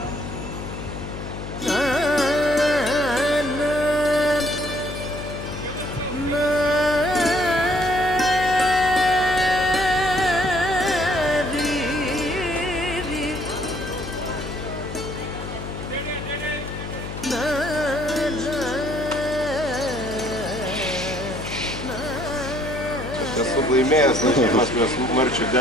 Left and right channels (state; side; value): noise; left; hum, 8 dB below the sound